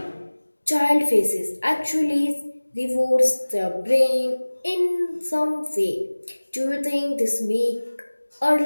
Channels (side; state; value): both; inverted; correlation -1.00